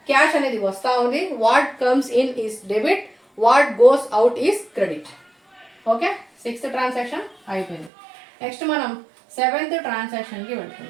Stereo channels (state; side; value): drops out; left; at 7.9 s